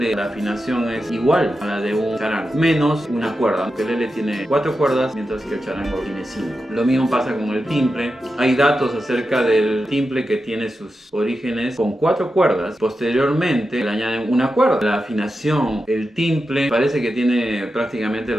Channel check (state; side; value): normal; both; correlation 0.90